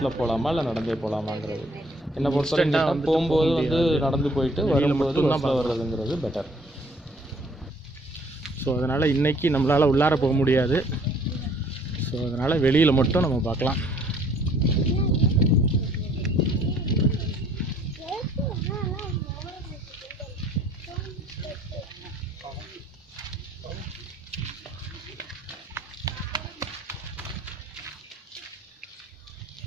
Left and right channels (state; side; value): normal; both; correlation 0.59